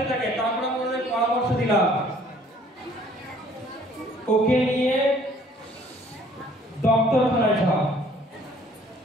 থাকে। তারপরে আমরা পরামর্শ দিলাম, ওকে নিয়ে ডক্টরখানায় যাও।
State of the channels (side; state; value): both; normal; correlation 0.57